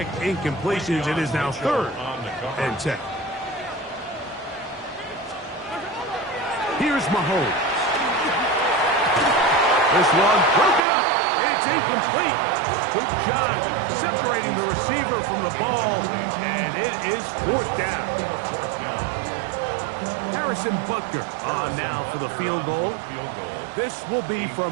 incompletions, it is now 3rd and 10. Here's Mahomes. This one broken up. It's incomplete. Good job separating the receiver from the ball. And it is 4th down. Harrison Butker on now for the field goal. This will be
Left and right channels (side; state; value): left; drops out; at 10.8 s